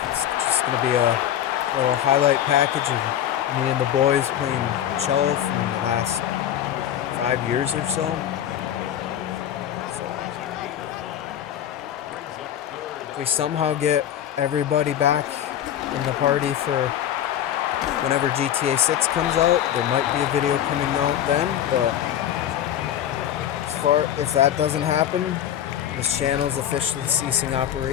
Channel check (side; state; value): right; quieter; 10.8 dB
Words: It's just going to be a little highlight package of me and the boys playing cello from the last 5 years or so. If we somehow get everybody back in the party for whenever GTA 6 comes out, there might be a video coming out then, but if that doesn't happen, this channel is officially ceasing